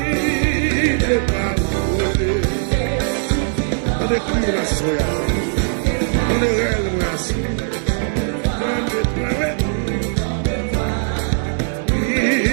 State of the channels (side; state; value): left; silent; digital silence